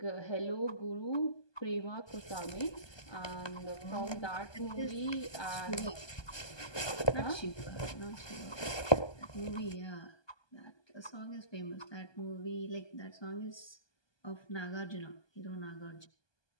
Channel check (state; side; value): late; right; 1.2 ms